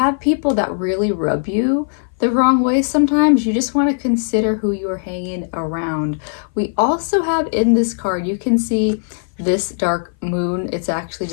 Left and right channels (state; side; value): silent; right; 58 dB below the other